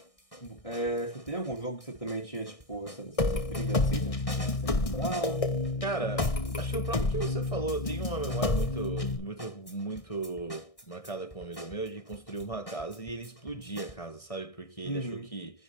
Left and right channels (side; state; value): right; late; 1.6 ms